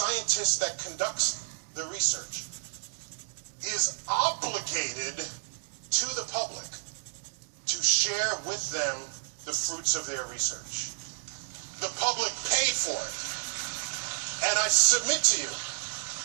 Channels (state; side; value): silent; left; digital silence